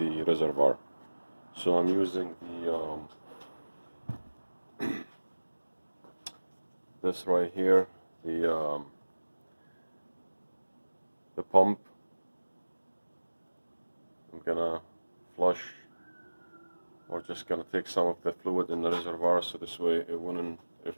reservoir. So I'm using the this right here, the pump. I'm gonna flush, or just gonna take some of the fluid in the reservoir, so this way it wouldn't, if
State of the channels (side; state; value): both; inverted; correlation -1.00